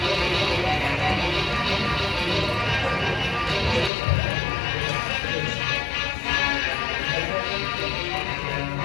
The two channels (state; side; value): drops out; right; at 3.9 s